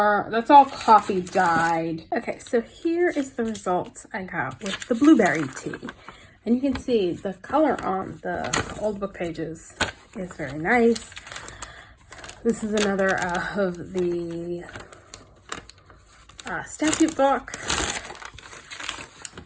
coffee dyed. Okay, so here is the results I got with the blueberry tea. And you can see the color on the old book pages is very nice. This is another of the statute book.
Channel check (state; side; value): identical; both; correlation 1.00